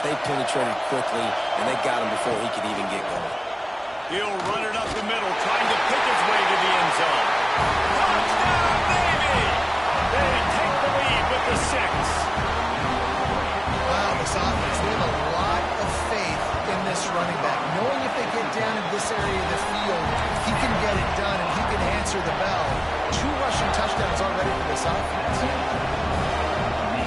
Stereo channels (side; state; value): both; identical; correlation 1.00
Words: They penetrated quickly, and they got him before he could even get going. He'll run it up the middle, trying to pick his way to the end zone. Touchdown, Navy! They take the lead with the 6. Wow, this offense, they have a lot of faith in this running back, knowing if they get down in this area of the field, he can get it done and he can answer the bell. 2 rushing touchdowns already for this offense.